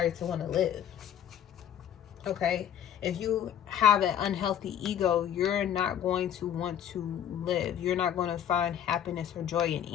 to want to live. Okay, if you have an unhealthy ego, you're not going to want to live. You're not going to find happiness or joy in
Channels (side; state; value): right; quieter; 9.8 dB